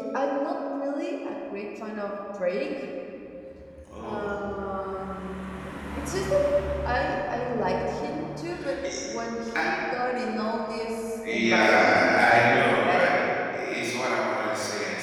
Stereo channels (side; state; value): both; identical; correlation 1.00